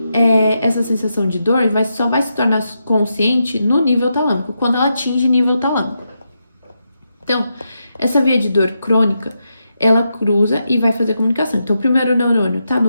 essa sensação de dor só vai se tornar consciente no nível talâmico, quando ela atinge nível talâmico. Então, essa via de dor crônica, ela cruza e vai fazer comunicação. Então, o primeiro neurônio está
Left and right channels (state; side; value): inverted; both; correlation -0.85